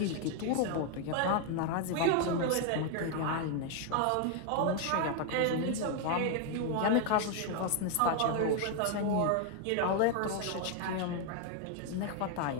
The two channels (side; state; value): both; different; correlation 0.01